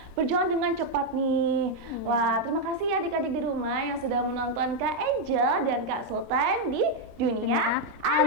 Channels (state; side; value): late; left; 22 ms